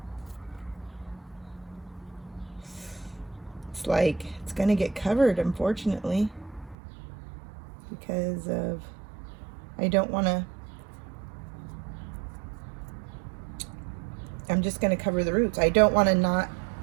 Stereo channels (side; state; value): left; drops out; at 6.8 s